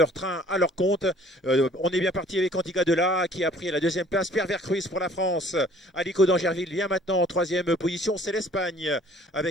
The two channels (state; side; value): normal; both; correlation 0.55